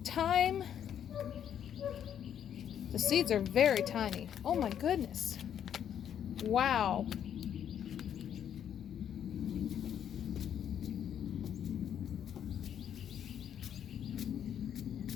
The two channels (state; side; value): quieter; right; 9.3 dB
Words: thyme, the seeds are very tiny. Oh my goodness. Wow.